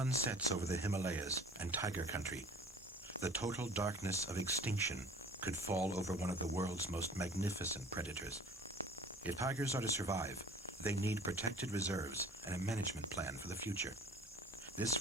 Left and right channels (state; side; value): normal; both; correlation 0.47